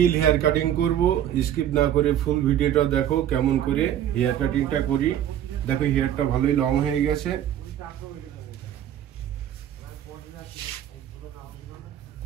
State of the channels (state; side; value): quieter; left; 10.9 dB